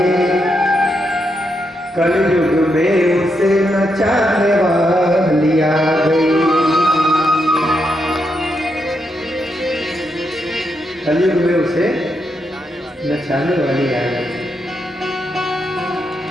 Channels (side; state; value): both; normal; correlation 0.82